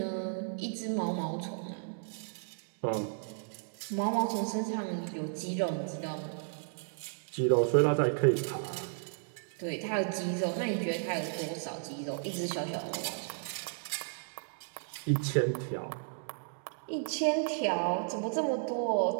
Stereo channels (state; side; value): silent; left; digital silence